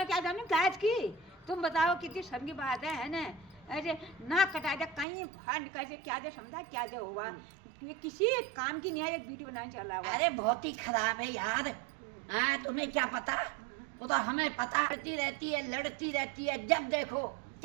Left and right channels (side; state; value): left; drops out; at 5.1 s